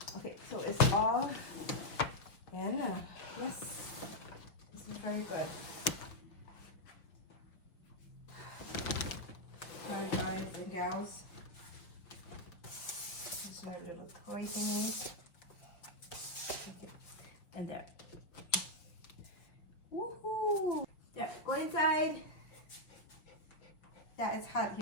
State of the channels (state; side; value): late; right; 5.7 ms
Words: Okay, so it's all in. Yes, this is very good. Sorry guys and gals. These are little toy thingies. Okay, and there. Woohoo! There, go inside. Yeah, it's hot